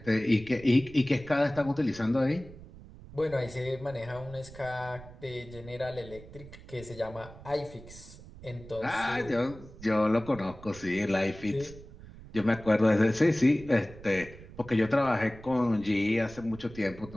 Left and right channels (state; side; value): noise; right; rumble, 17 dB below the sound